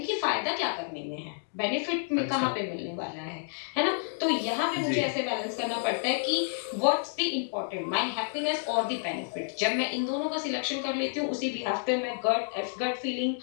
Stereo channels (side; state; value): right; silent; digital silence